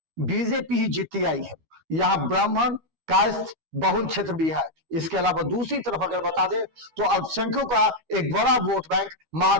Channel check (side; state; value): left; late; 12 ms